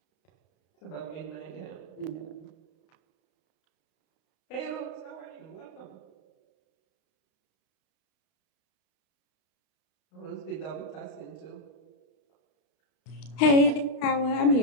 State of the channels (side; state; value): right; late; 32 ms